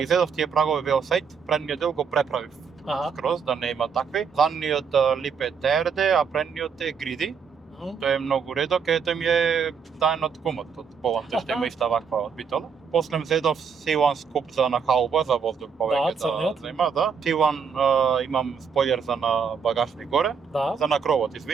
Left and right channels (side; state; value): left; quieter; 6.3 dB